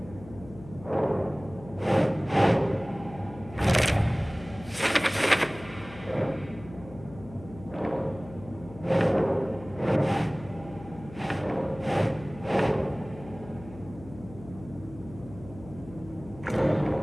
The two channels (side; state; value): left; noise; hum, 17 dB below the sound